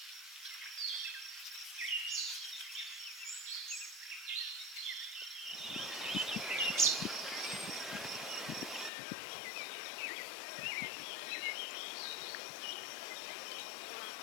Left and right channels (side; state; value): right; drops out; at 8.9 s